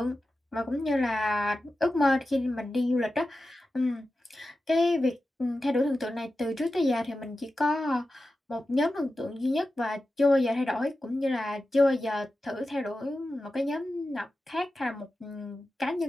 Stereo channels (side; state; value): both; normal; correlation 0.93